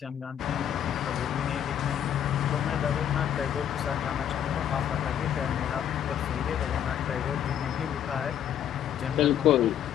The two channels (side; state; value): right; quieter; 9.8 dB